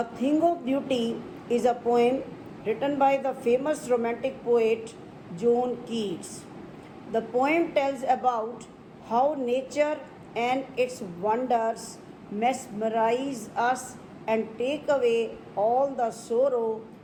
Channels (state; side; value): identical; both; correlation 1.00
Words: Thing of Beauty is a poem written by the famous romantic poet John Keats. The poem tells about how nature and its wonders mesmerize us and take away all the sorrow